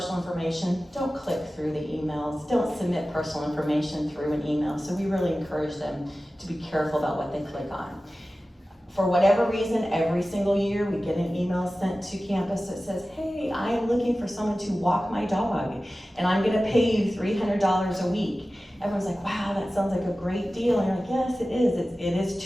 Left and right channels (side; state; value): both; normal; correlation 0.96